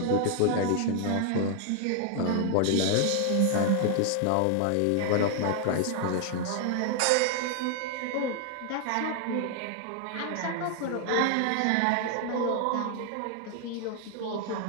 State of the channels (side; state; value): both; different; correlation 0.00